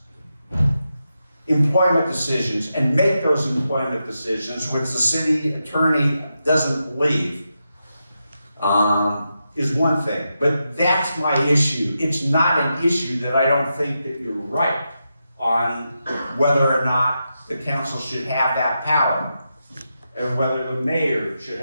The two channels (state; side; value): inverted; both; correlation -0.87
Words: employment decisions and make those employment decisions, which the city attorney doesn't believe, is one thing. But that's my issue. It's not an issue that I don't think that you're right on whether or not the council should have that power and whether the mayor should